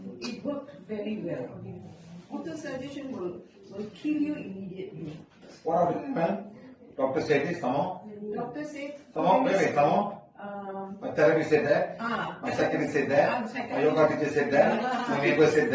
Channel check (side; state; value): both; identical; correlation 1.00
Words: it worked very well. Auto-suggestion will kill you immediately. What about it, ma'am? Doctor said this, come on. Doctor said... Come on, wait, come on. My therapist said that. My secretary said that. My yoga teacher said that. My neighbor said